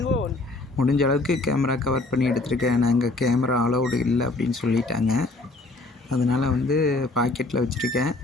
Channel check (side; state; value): right; quieter; 3.1 dB